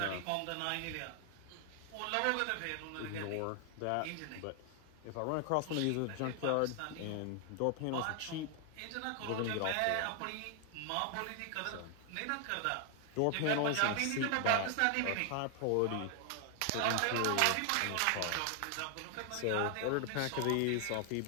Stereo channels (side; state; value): both; different; correlation 0.00